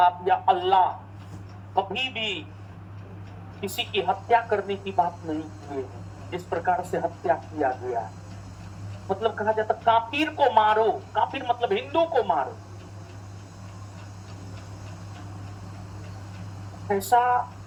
या अल्लाह कभी भी किसी की हत्या करने की बात नहीं किए हैं, जिस प्रकार से हत्या किया गया है। मतलब कहा जाता काफिर को मारो, काफिर मतलब हिंदू को मारो, ऐसा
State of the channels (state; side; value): identical; both; correlation 1.00